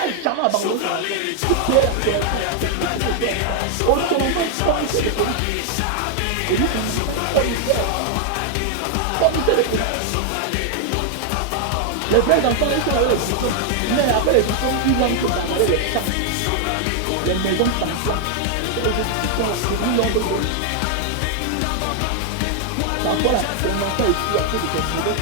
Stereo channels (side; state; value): both; different; correlation 0.00